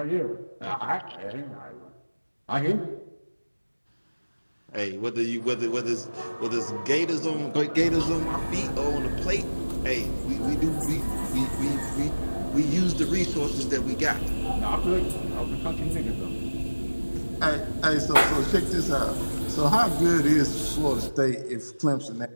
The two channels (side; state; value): both; inverted; correlation -1.00